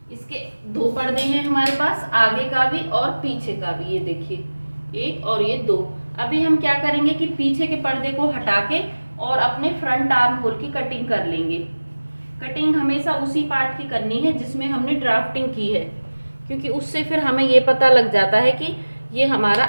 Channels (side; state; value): both; inverted; correlation -1.00